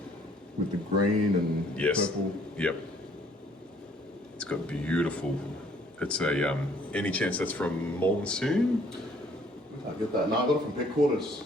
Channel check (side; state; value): both; normal; correlation 0.61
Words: with the green and purple. Yep. It's got beautiful. It's a any chance that's from Monsoon? I get that. No, I got it from Pet Quarters.